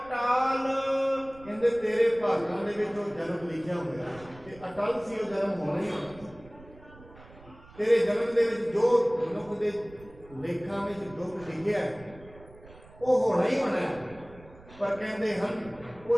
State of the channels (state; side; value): noise; right; rumble, 22 dB below the sound